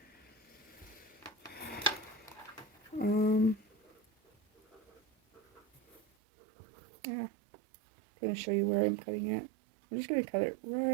Yeah, I'm going to show you where I'm cutting it. I'm just going to cut it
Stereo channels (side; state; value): left; drops out; at 6.0 s